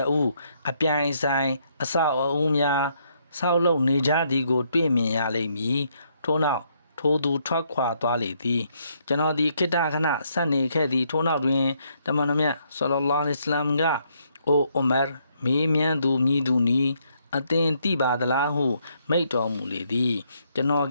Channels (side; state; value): both; inverted; correlation -0.72